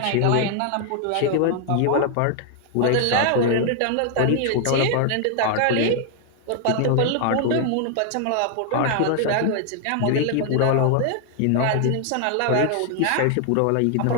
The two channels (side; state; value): both; different; correlation 0.00